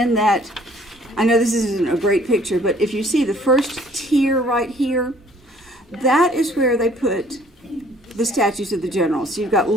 that, I know this isn't a great picture, but if you see the first tier right here, that is where they put the statues of the generals. So you've got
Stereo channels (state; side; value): normal; both; correlation 0.57